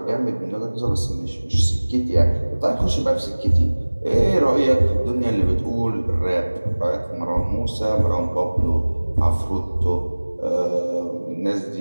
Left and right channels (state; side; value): inverted; both; correlation -1.00